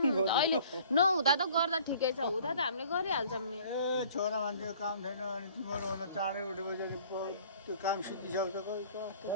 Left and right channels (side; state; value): both; inverted; correlation -0.53